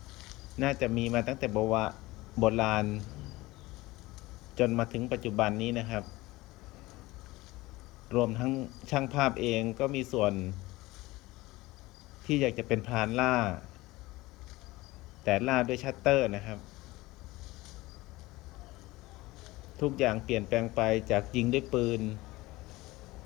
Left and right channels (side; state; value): right; quieter; 19.8 dB